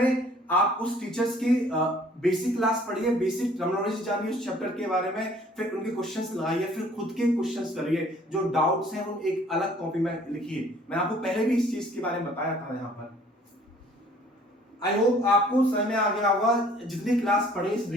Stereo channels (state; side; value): normal; both; correlation 0.56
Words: आप उस टीचर्स की बेसिक क्लास पढ़िए, बेसिक टर्मिनोलॉजी जानिए उस चैप्टर के बारे में, फिर उनके क्वेश्चंस लगाइए, फिर खुद के क्वेश्चंस करिए। जो डाउट्स हैं उन एक अलग कॉपी में लिखिए। मैं आपको पहले भी इस चीज के बारे में बताया था यहाँ पर। आई होप आपको समझ में आ गया होगा। जितनी क्लास पढ़ी इस